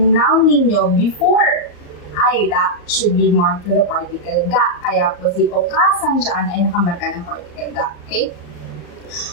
noun ninyo before aida should be marked with the particle ga. Kaya po si okasan dyan ay nakamarka ng particle ga. Okay?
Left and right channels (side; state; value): right; late; 34 ms